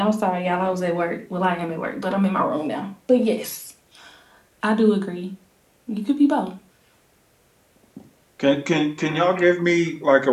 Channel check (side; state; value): both; identical; correlation 1.00